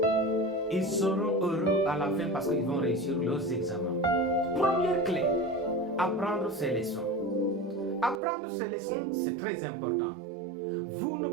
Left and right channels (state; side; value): drops out; left; at 8.2 s